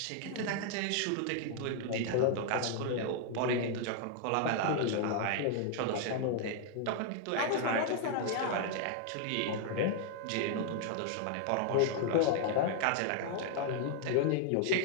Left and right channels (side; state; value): both; different; correlation 0.00